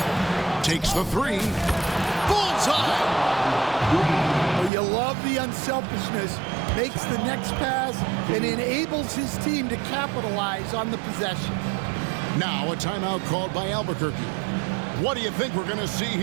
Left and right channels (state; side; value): drops out; left; at 4.7 s